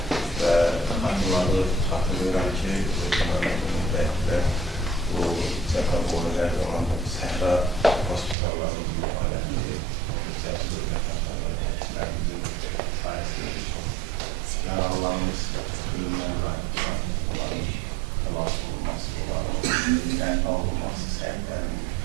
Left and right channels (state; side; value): drops out; left; at 8.3 s